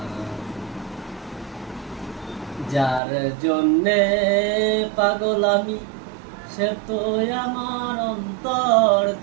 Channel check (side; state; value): left; drops out; at 3.0 s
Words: যার জন্যে পাগল আমি, সে তো আমার